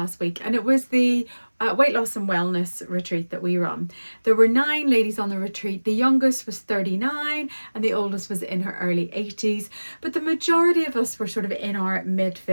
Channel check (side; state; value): both; inverted; correlation -1.00